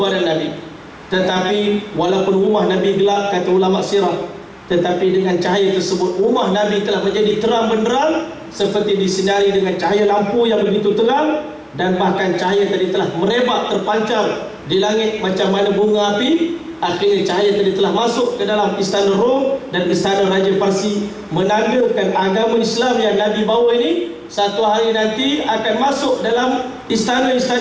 Nabi, tetapi walaupun rumah Nabi gelap, kata ulama sirah, tetapi dengan cahaya tersebut rumah Nabi telah menjadi terang benderang, seperti disinari dengan cahaya lampu yang begitu terang. Dan bahkan cahaya tadi telah merebak, terpancar di langit macam mana bunga api. Akhirnya cahaya tadi telah masuk ke dalam istana Rom dan istana Raja Parsi, menandakan agama Islam yang Nabi bawa ini satu hari nanti akan masuk dalam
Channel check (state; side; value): identical; both; correlation 1.00